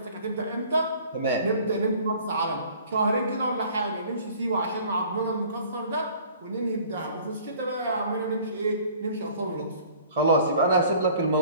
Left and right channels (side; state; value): both; inverted; correlation -0.52